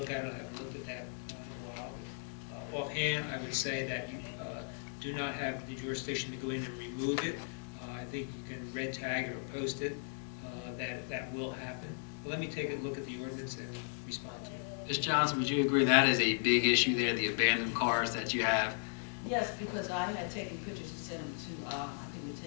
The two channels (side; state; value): right; silent; 54 dB below the other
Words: at it. I haven't looked at that in a while. Offhand, I would say that you do not have the jurisdiction to go in and remove it. I think you can red tag it or post it. That will happen. But let me take a look at the ordinance and respond to you. Ms. Johnson, would you agree that is a big issue there, the abandoned cars that you have? Yes, because I had taken pictures and sent them to, I think,